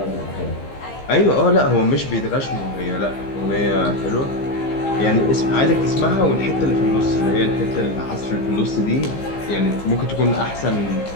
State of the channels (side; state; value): right; late; 15 ms